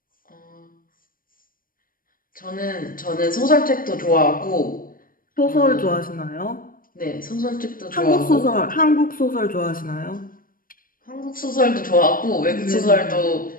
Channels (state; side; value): late; right; 0.41 ms